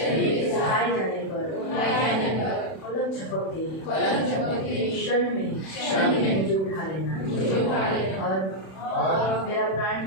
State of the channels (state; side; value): late; right; 31 ms